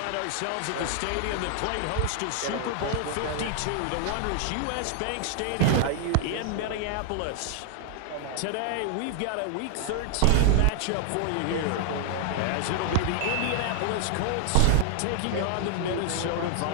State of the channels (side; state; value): both; different; correlation 0.00